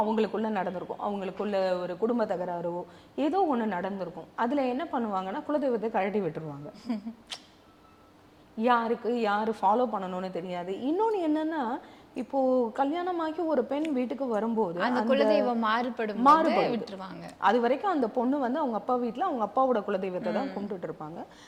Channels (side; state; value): both; identical; correlation 1.00